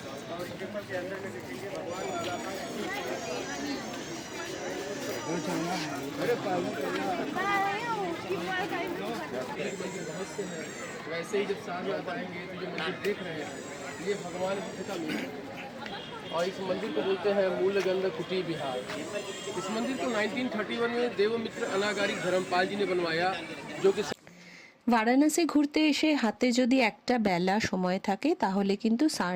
वैसे ही जब सारनाथ आएंगे तो जो मंदिर देख रहे हैं ये भगवान बुद्ध का मंदिर है और इस मंदिर को बोलते हैं मूलगंध कुटी विहार। इस मंदिर को 1931 में देवमित्र अनागारी धर्मपाल जी ने बनवाया, जो कि বারাণসী ঘুরতে এসে হাতে যদি একটা বেলা সময় থাকে তাহলে কিন্তু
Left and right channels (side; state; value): both; identical; correlation 1.00